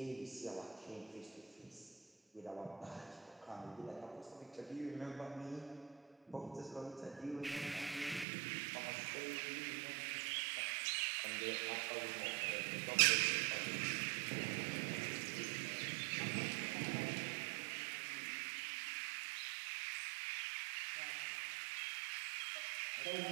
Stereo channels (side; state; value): left; drops out; at 8.2 s